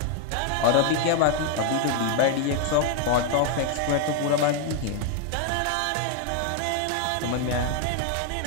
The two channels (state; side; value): different; both; correlation 0.01